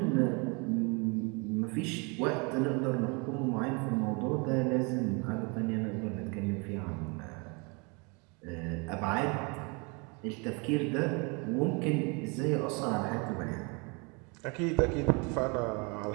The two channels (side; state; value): left; quieter; 31.2 dB